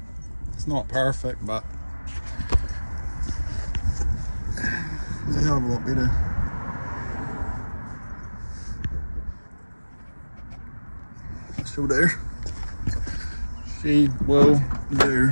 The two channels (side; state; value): both; inverted; correlation -1.00